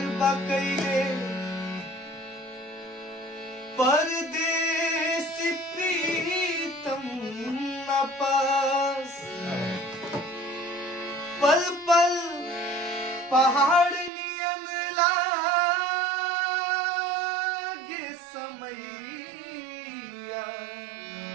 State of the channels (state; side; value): drops out; left; at 14.1 s